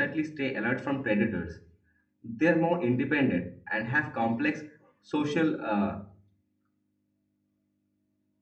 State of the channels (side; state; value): both; identical; correlation 1.00